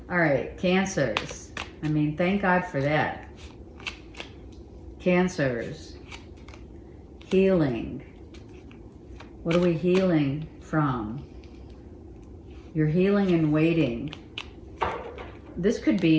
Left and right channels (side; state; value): both; identical; correlation 1.00